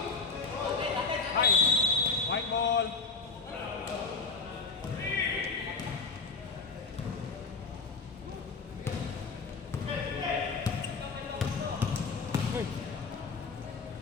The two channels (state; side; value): quieter; right; 4.4 dB